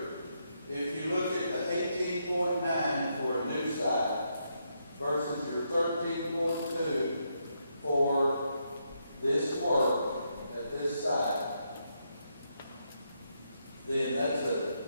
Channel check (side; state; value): both; inverted; correlation -0.80